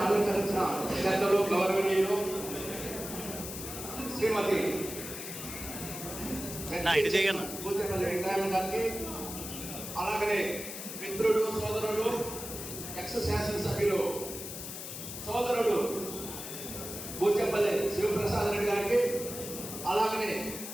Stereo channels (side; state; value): left; noise; hiss, 8 dB below the sound